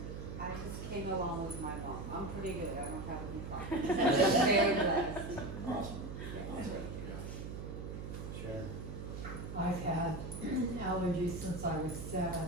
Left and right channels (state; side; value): noise; right; hum, 7 dB below the sound